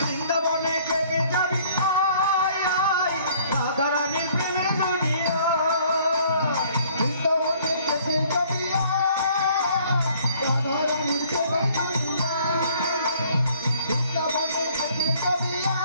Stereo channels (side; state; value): both; inverted; correlation -0.58